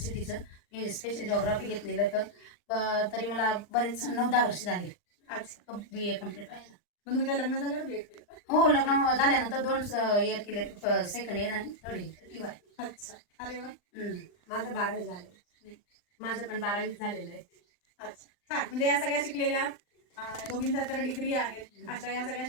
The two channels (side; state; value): right; late; 39 ms